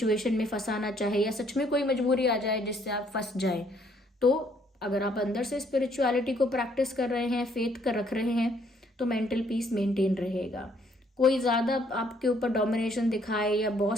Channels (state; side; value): normal; both; correlation 0.66